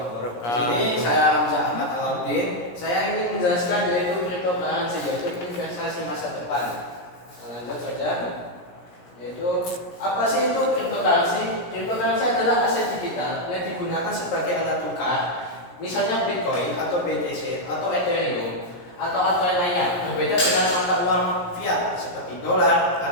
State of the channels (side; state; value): right; late; 17 ms